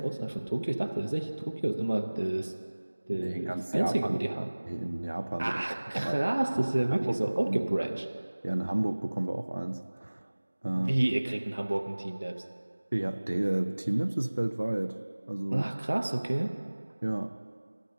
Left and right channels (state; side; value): inverted; both; correlation -1.00